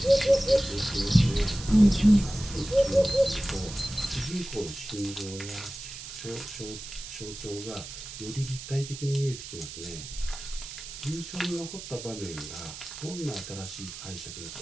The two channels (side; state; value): right; noise; hiss, 11 dB below the sound